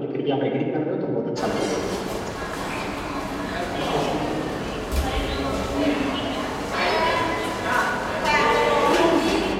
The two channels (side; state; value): both; identical; correlation 1.00